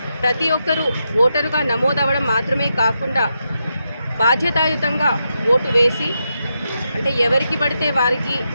ప్రతి ఒక్కరూ ఓటరుగా నమోదవ్వడం మాత్రమే కాకుండా బాధ్యతాయుతంగా ఓటు వేసి, అంటే ఎవరికి పడితే వారికి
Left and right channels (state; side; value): inverted; both; correlation -0.85